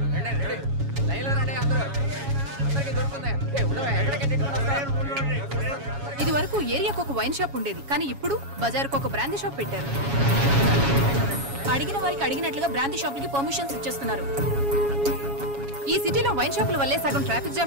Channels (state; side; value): late; left; 7.2 ms